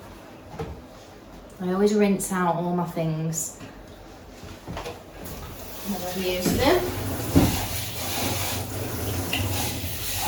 I always rinse out all my things when I've used them.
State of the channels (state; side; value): identical; both; correlation 1.00